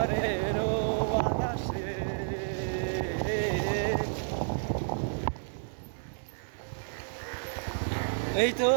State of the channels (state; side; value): silent; left; digital silence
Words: বাতাসে। এই তো